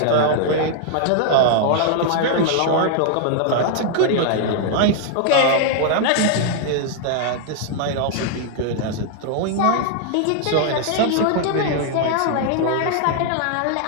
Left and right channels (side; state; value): both; different; correlation 0.00